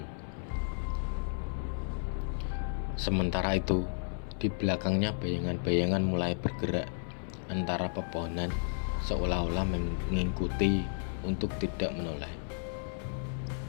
Sementara itu, di belakangnya bayangan-bayangan mulai bergerak antara pepohonan, seolah-olah mengikuti untuk tidak menoleh.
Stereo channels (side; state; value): right; silent; 56 dB below the other